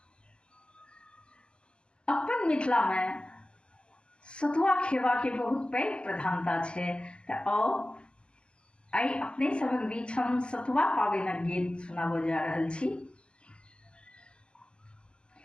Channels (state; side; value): late; right; 0.051 ms